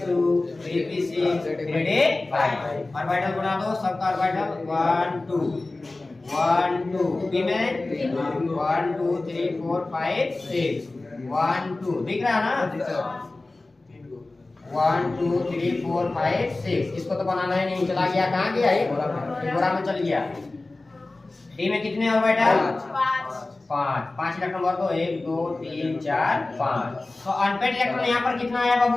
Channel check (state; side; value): quieter; right; 3.1 dB